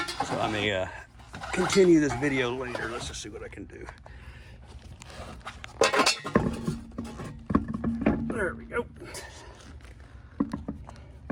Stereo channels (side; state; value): both; identical; correlation 1.00